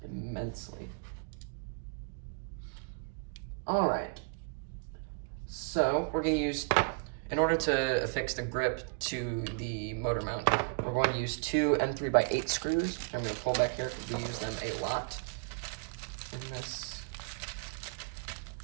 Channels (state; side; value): quieter; left; 37.3 dB